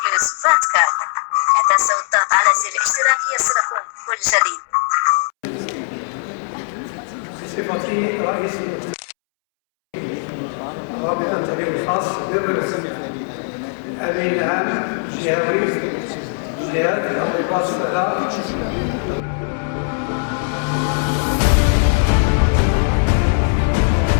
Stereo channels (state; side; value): silent; right; 66 dB below the other